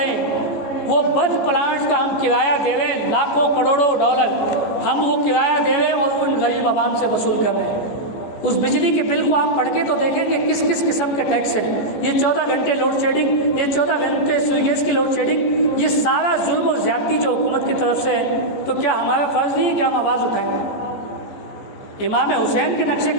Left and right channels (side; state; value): right; late; 14 ms